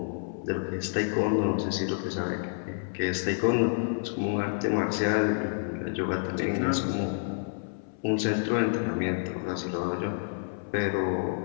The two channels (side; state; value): right; silent; 59 dB below the other